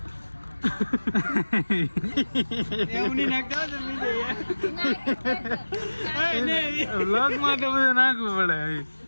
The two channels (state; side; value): inverted; both; correlation -1.00